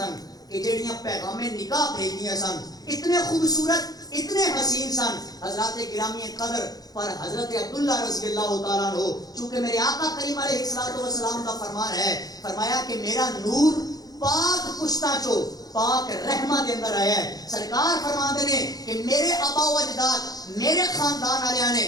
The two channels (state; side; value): late; right; 0.18 ms